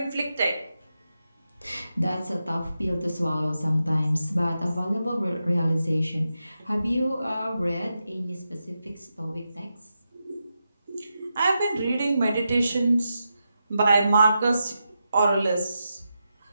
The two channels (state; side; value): inverted; both; correlation -0.88